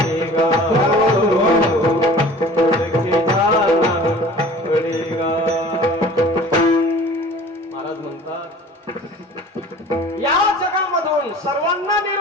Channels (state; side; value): normal; both; correlation 0.45